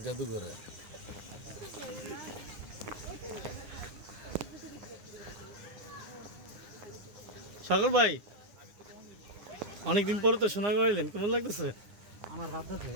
জাদুঘরে সাগর ভাই, অনেকদিন পরে তো সোনাগাঁও এলেন, কেমন লাগতেছে? আমার রাধা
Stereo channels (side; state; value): left; late; 9.8 ms